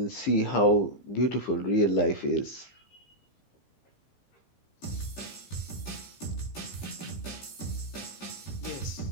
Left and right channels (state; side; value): late; right; 15 ms